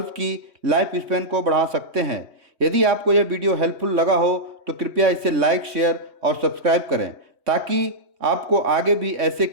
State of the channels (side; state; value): left; late; 3.2 ms